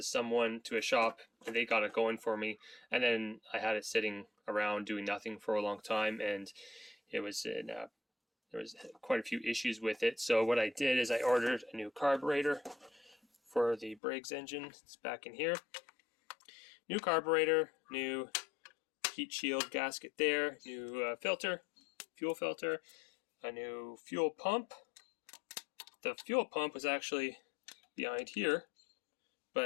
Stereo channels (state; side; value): drops out; right; at 14.0 s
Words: a shop, and they got it going for me. And then I had it sitting around doing nothing for a long time, and there was quite a few issues with it. So what I did is I ordered a new carburetor for the Briggs engine. It's back in here. New carburetor, new heat shield gasket there, new fuel filter, a new fuel pump. The fuel pump was actually behind here,